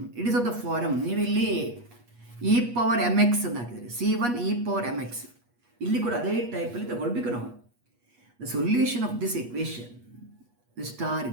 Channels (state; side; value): late; left; 8.3 ms